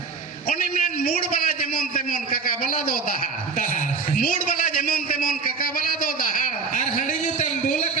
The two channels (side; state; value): left; quieter; 4.8 dB